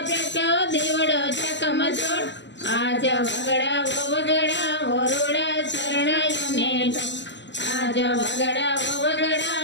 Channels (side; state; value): right; late; 0.53 ms